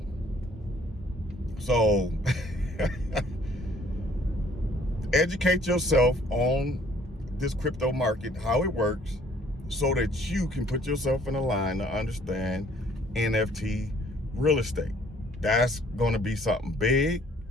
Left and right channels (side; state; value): both; normal; correlation 0.59